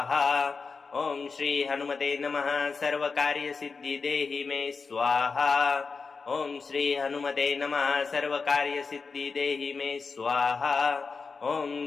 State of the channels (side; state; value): right; quieter; 4.7 dB